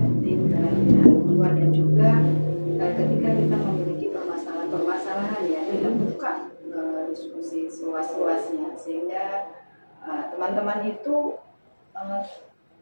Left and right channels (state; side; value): inverted; both; correlation -1.00